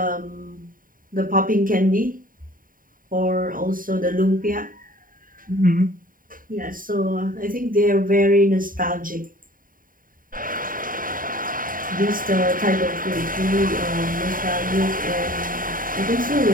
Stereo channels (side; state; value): left; late; 0.40 ms